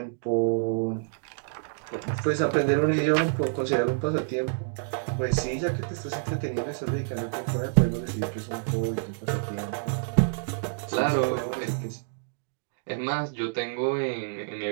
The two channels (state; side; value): silent; left; digital silence